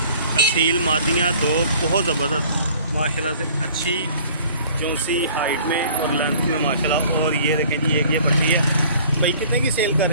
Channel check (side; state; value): both; inverted; correlation -0.51